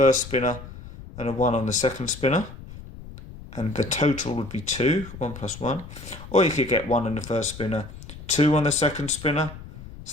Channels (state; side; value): noise; left; rumble, 14 dB below the sound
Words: spinner and a 1 on the second spinner. And the total would be 2, 1 plus 1. Or you could get 1 on the first spinner, 2 on the second spinner.